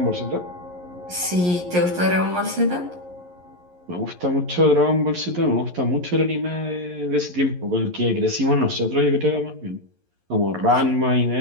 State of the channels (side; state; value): left; late; 11 ms